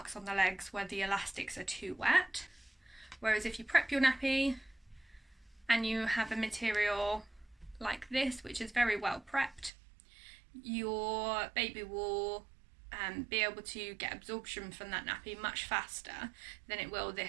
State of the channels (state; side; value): drops out; left; at 9.7 s